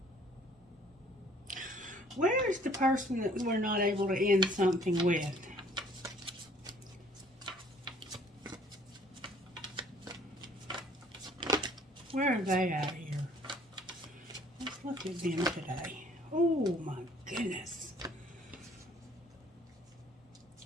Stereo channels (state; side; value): normal; both; correlation 0.58